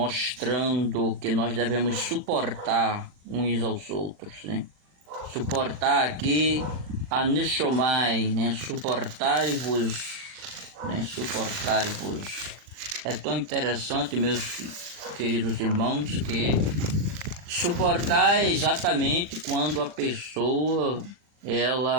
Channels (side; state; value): left; late; 40 ms